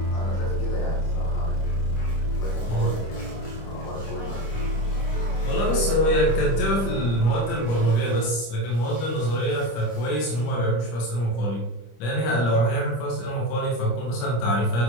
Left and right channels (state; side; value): late; right; 25 ms